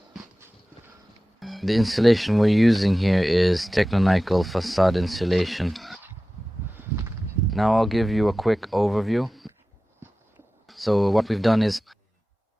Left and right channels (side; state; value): both; normal; correlation 0.96